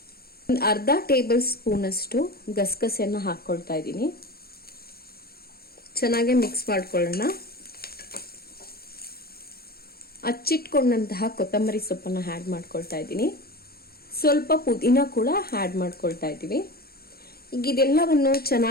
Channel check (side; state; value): right; late; 0.44 ms